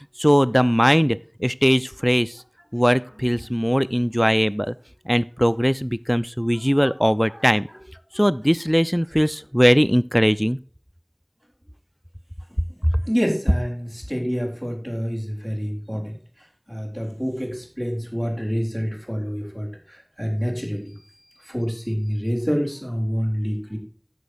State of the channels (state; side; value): identical; both; correlation 1.00